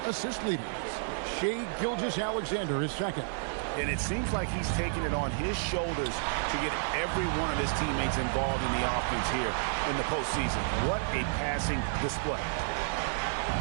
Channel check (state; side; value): silent; left; 57 dB below the other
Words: assist leaders. Shai Gilgeous-Alexander is second. And it seems like he's taking it on his shoulders to get every one of his teammates involved in the offense here in the postseason. What a passing display.